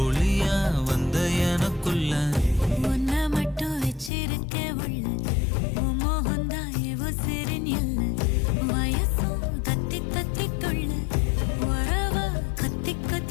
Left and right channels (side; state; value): right; drops out; at 4.1 s